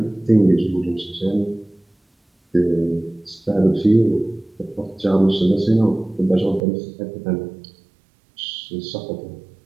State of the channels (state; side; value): drops out; left; at 6.6 s